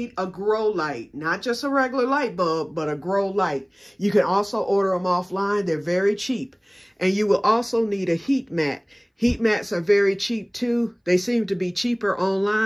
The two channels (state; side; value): identical; both; correlation 1.00